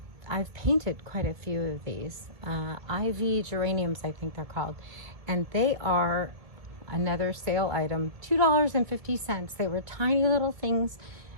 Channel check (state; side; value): late; left; 1.9 ms